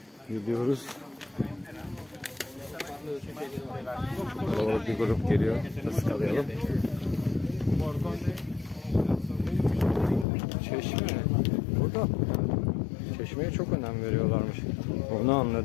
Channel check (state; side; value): drops out; right; at 10.2 s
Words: Gidiyoruz. Kalabalık bir grup geliyor. Iskalayalım. Çeşme. Burada çeşmeye çok önem veriyorlarmış. Onu